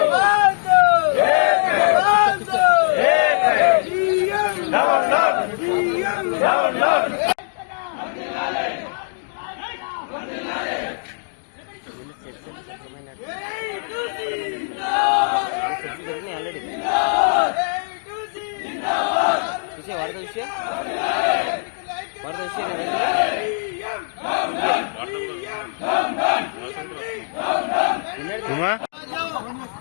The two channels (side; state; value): right; silent; digital silence